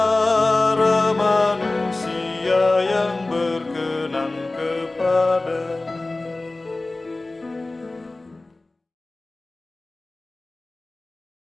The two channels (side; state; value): right; quieter; 3.0 dB